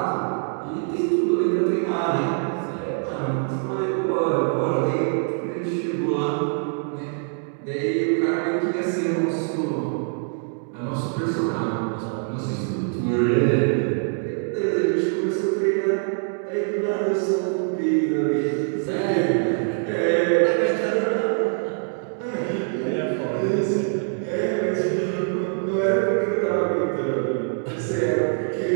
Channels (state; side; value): silent; left; 58 dB below the other